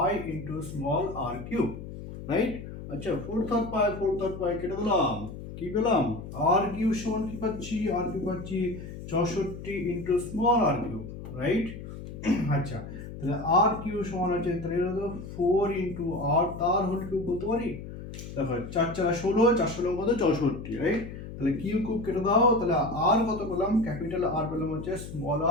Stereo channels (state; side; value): noise; left; hum, 11 dB below the sound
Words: ইনটু স্মল আর কিউ, রাইট? আচ্ছা, 4/3 পাই কেটে দিলাম, কি পেলাম? আর কিউ সমান কি পাচ্ছি? আর কিউ পাচ্ছি 64 ইনটু স্মল আর কিউ, রাইট? আচ্ছা, তাহলে আর কিউ সমান আছে, তাহলে এটা তো 4 ইনটু আর তার হোল কিউব বলতে পারি। দেখো 4 4 16, 4 16 কত? 64, রাইট? তাহলে কিউ কিউব কেটে দাও, তাহলে আর কত পেলাম? ক্যাপিটাল আর পেলাম হচ্ছে স্মল